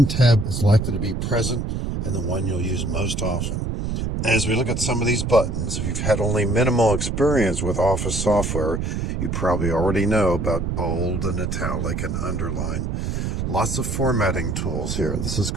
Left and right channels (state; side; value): noise; right; rumble, 2 dB below the sound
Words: tab is likely to be present and the one you'll use most often. As we look at some of these buttons, if you've had only minimal experience with Office software, you probably already know about bold and italic and underline. Lots of formatting tools here. This is